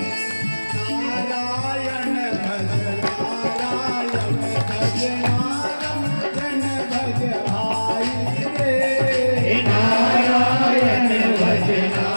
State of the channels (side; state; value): both; inverted; correlation -1.00